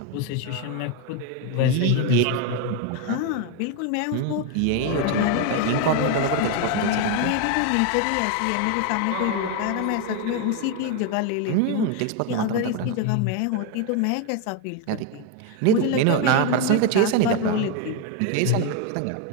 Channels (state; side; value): different; both; correlation 0.02